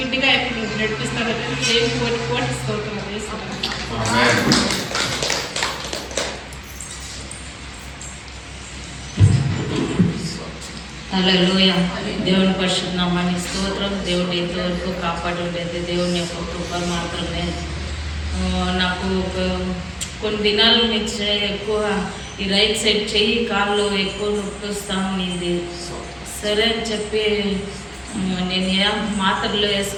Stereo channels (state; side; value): identical; both; correlation 1.00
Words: ఎప్పుడు నడిపిస్తాడు. దేవునికి కోటి స్తోత్రం. హల్లెలూయా. దేవుని పరిశుద్ధ నామానికి స్తోత్రం. దేవుడు ఎంతవరకు కాపాడి ఉండేది దేవుని యొక్క కృప మాత్రమే. నాకు కొన్ని దినాల నుంచి ఎక్కువ ఈ రైట్ సైడ్ చెయ్యి కాళ్ళు ఎక్కువ నొప్పి వస్తూ ఉన్నింది. సరే అని చెప్పి నేను ఏం మాత్రలు